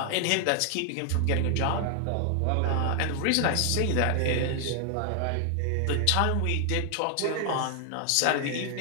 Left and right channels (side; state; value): both; different; correlation 0.00